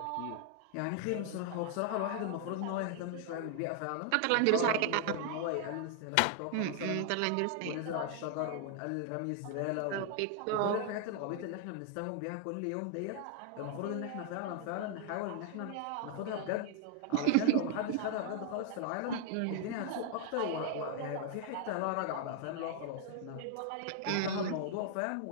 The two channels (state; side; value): different; both; correlation 0.00